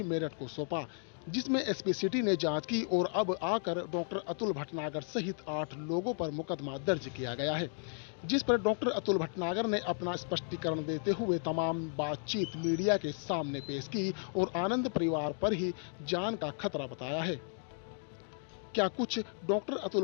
मेरठ को सौंपा, जिसमें एसपी सिटी ने जांच की और अब आकर डॉक्टर अतुल भटनागर सहित 8 लोगों पर मुकदमा दर्ज किया गया है, जिस पर डॉक्टर अतुल भटनागर ने अपना स्पष्टीकरण देते हुए तमाम बातचीत मीडिया के सामने पेश की और आनंद परिवार पर ही जान का खतरा बताया है। क्या कुछ डॉक्टर अतुल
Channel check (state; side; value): silent; right; 55 dB below the other